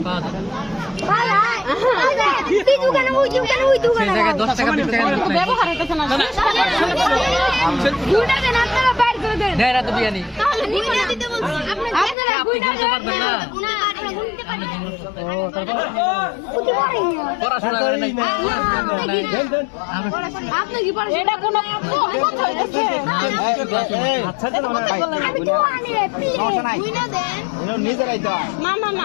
পাওয়া যাবে তুই দোকানে ওই দোকানে সেই জায়গায় 10 টাকা 20 টাকা ব্যবহার হইতেছে না দুইটা দেন আপনারা বাইর করে দেন দেয় না তো বিয়ানি তাহলে গুণা দিতে বলছি আপনারা গুণা দিতে পারবেন না আমরা গুনতে পারি ও তারপর বুঝতে পারি না পড়াশোনা করে নাই আপনি কি পারেন এটা কোন কথা হইতেছে আচ্ছা তো না ভাই আমি তো আনি রে গুণা দেন নিজেরাই তো না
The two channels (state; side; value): drops out; right; at 12.2 s